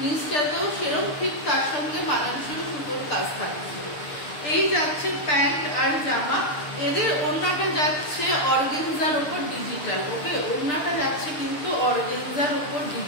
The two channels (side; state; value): right; late; 6.7 ms